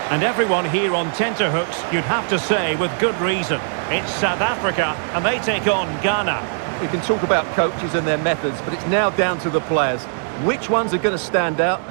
And everyone here on tenterhooks, you'd have to say with good reason. It's South Africa, and they take on Ghana. We can talk about coaches and their methods, but it's now down to the players. Which ones are going to stand out,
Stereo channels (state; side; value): silent; left; digital silence